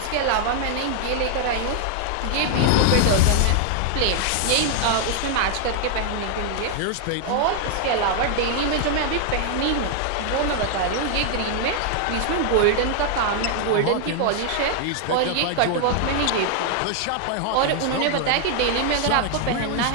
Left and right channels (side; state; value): both; different; correlation 0.00